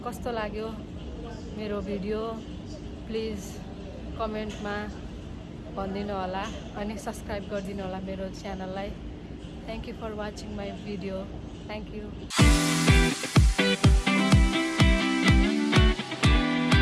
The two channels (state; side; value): identical; both; correlation 1.00